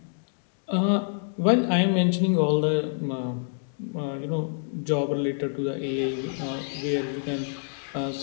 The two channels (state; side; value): silent; right; digital silence